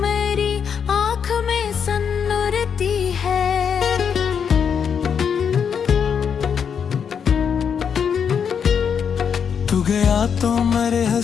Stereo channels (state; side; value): quieter; right; 7.2 dB